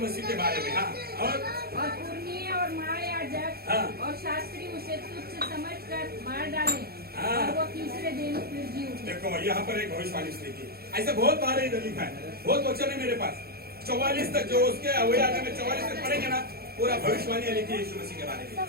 मसीह के बारे में. हाँ. और पुरनीय और महायाजक और शास्त्री उसे तुच्छ समझकर मार डाले और वो तीसरे दिन फिर जी उठे. देखो यहाँ पर एक भविष्यवाणी लिखी. ऐसे बहुत बार इधर लिखा है, बहुत वचन है मेरे पास. 44 तक जो उसके वही आने में 44 तक पढ़ेंगे ना, पूरा भविष्यवाणी लिखी है यीशु मसीह के बारे में.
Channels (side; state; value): left; late; 0.45 ms